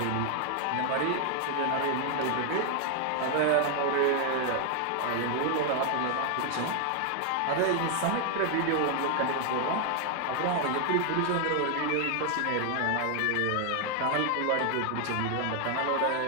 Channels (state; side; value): different; both; correlation 0.00